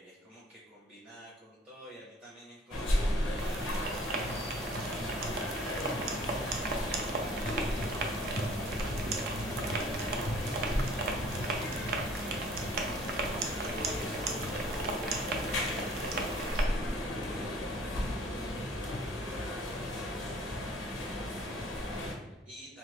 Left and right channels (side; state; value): both; normal; correlation 0.54